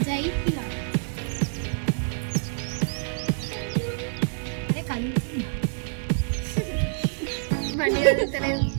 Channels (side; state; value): left; silent; digital silence